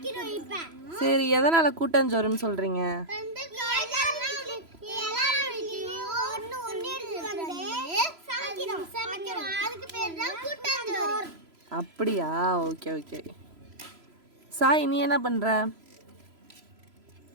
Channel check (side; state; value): left; late; 3.0 ms